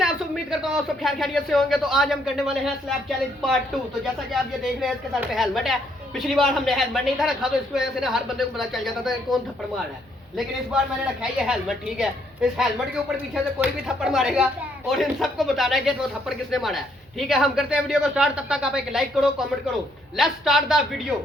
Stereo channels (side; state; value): both; normal; correlation 0.70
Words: आप सब? उम्मीद करता हूँ आप सब खैर खैरियत से होंगे। तो आज हम करने वाले हैं स्लैब चैलेंज पार्ट 2। तो जैसा कि आप ये देख रहे हैं, इसके सर पे हेलमेट है। पिछली बार हमने हेलमेट नहीं था रखा, तो इसकी वजह से ना हर बंदे को पता चल जाता था कौन थप्पड़ मार रहा है। लेकिन इस बार मैंने रखा है ये हेलमेट, ठीक है। इस हेलमेट के ऊपर पीछे से कोई भी थप्पड़ मारेगा और इन सबको बताना है कि वो थप्पड़ किसने मारा है, ठीक है। हम करते हैं वीडियो को स्टार्ट। तब तक आप एक लाइक करो, कमेंट करो। Let's start the video.